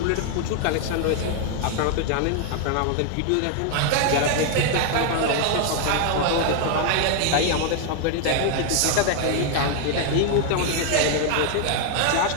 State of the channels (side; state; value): both; different; correlation 0.00